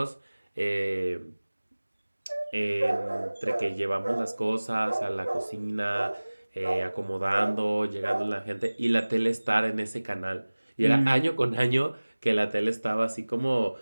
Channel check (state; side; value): inverted; both; correlation -1.00